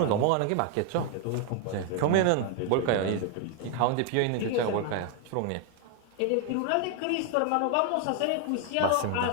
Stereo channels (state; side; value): different; both; correlation 0.01